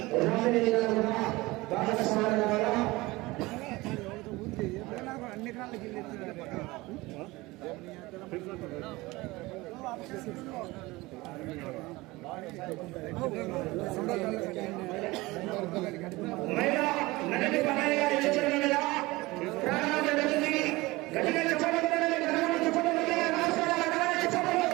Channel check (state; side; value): quieter; left; 21.2 dB